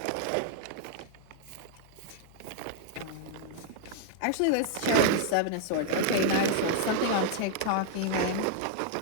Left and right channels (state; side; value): different; both; correlation 0.00